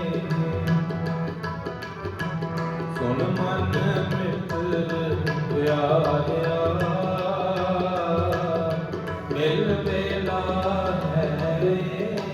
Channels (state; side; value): identical; both; correlation 1.00